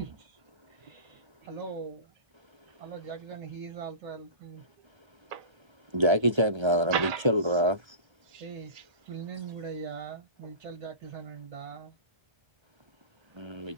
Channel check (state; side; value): late; left; 1.3 ms